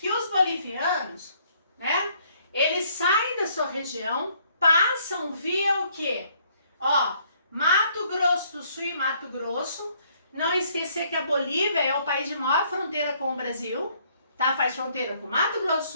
os bolivianos, né, eles saem da sua região, passam via o quê? Ó, Mato Grosso do Sul e Mato Grosso. Não esquecer que a Bolívia é o país de maior fronteira com o Brasil, tá? Faz fronteira com Mato Grosso do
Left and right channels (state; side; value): inverted; both; correlation -0.65